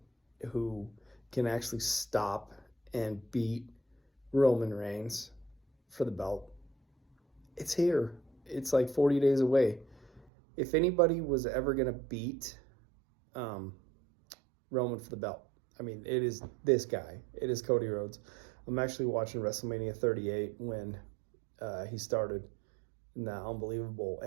who can actually stop and beat Roman Reigns for the belt. It's here. It's like 40 days away. If anybody was ever going to beat um, Roman for the belt, I mean, it is this guy. It is Cody Rhodes. I'm actually watching WrestleMania 38 when he started in that unbelievable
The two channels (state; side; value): drops out; left; at 10.2 s